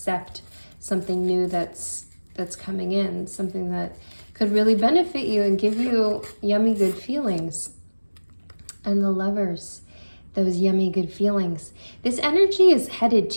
something new that's coming in, something that could really benefit you and give you yummy good feelings. And the Lovers, those yummy good feelings. This energy is headed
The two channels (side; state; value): both; inverted; correlation -1.00